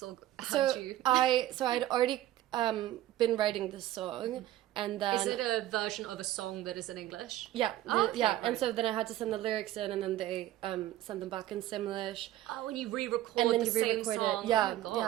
Or So you? I'd already been writing this song. And then, is it a version of a song that is in English? Yeah, Okay, yeah. right. And so then I had to send the lyrics in, and then they sent them back in Simlish. Oh, and you re-record And then the you same re-record song. it. Yeah, Oh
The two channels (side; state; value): left; quieter; 14.2 dB